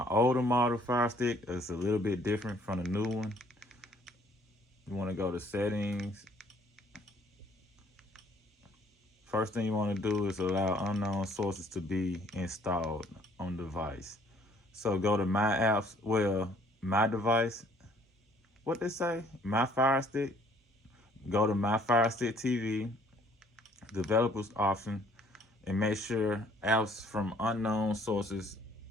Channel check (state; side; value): normal; both; correlation 0.59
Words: older model Fire Stick is a little bit different from the new one. You want to go to settings. First thing you want to do is allow unknown sources to be installed on device. So go to my apps, well, my device, what they say, my Fire Stick. Go to my Fire Stick TV, developers option, and make sure apps from unknown sources